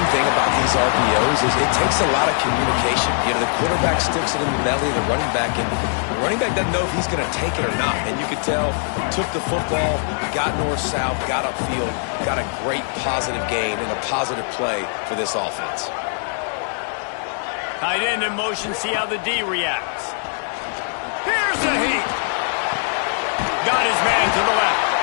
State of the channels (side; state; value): right; silent; 59 dB below the other